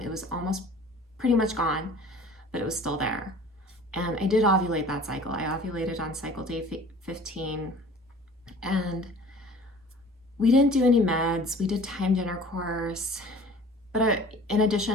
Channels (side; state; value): both; normal; correlation 0.46